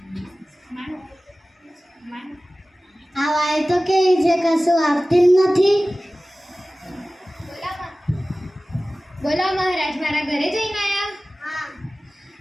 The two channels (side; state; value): both; normal; correlation 0.97